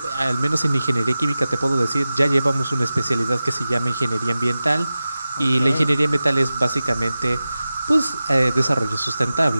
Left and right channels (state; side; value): inverted; both; correlation -0.95